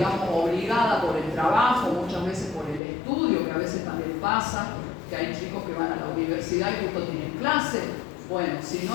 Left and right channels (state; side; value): drops out; right; at 2.8 s